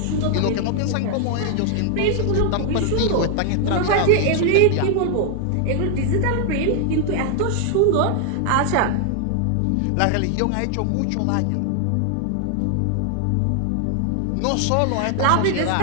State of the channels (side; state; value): both; different; correlation 0.00